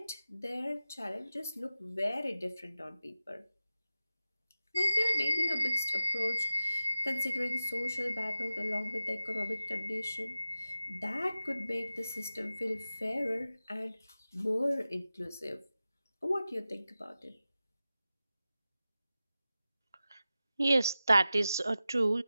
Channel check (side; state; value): both; inverted; correlation -0.94